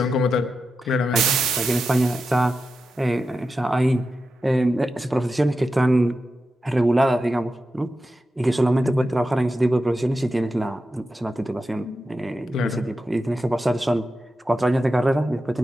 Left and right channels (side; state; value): both; normal; correlation 0.90